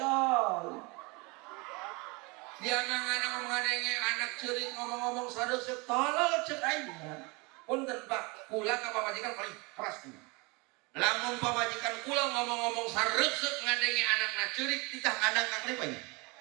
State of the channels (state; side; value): quieter; left; 27.6 dB